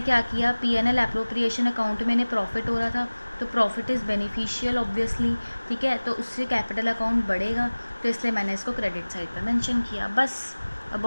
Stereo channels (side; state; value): both; inverted; correlation -1.00